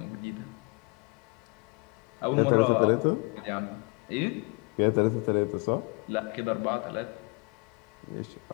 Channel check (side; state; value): right; quieter; 30.4 dB